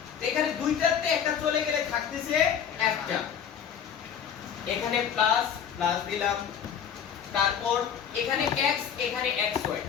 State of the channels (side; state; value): right; quieter; 8.3 dB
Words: তো এখানে দুইটাতে একটা চলে গেলে থাকতেছে একটা, এখানে প্লাস প্লাস দিলাম, তারপর এখানে x এখানে xy,